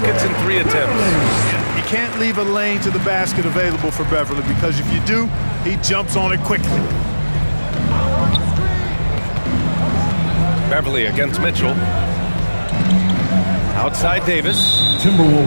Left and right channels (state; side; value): inverted; both; correlation -1.00